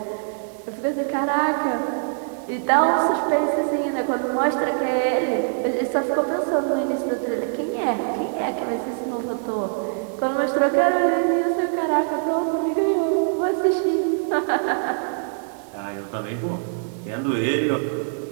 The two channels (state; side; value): silent; left; digital silence